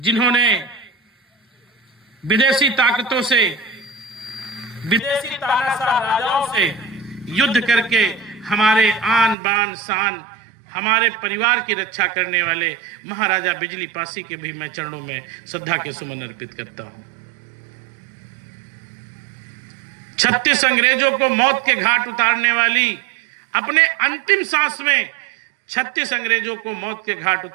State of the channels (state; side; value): drops out; left; at 9.3 s